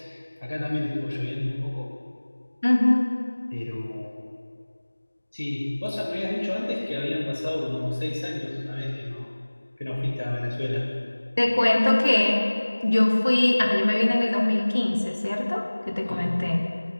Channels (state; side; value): inverted; both; correlation -1.00